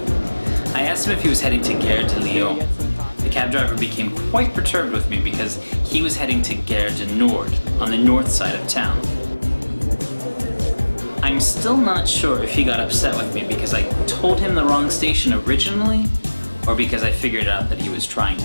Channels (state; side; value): inverted; both; correlation -1.00